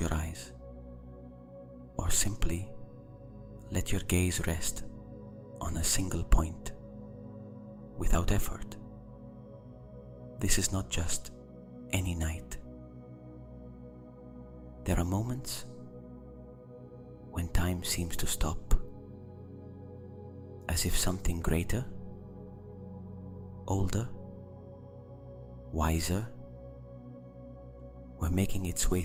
your eyes, or simply let your gaze rest on a single point without effort. This is not just any night. There are moments when time seems to stop, as if something greater, older, wiser were making its way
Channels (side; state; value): both; identical; correlation 1.00